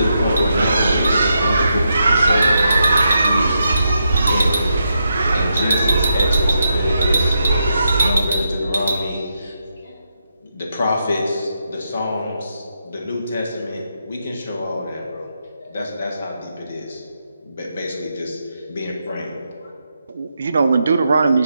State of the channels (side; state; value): both; inverted; correlation -0.83